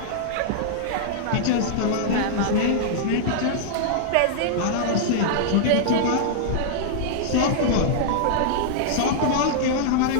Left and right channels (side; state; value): both; different; correlation -0.01